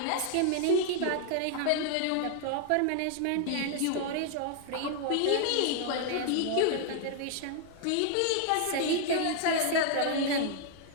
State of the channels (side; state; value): both; different; correlation 0.00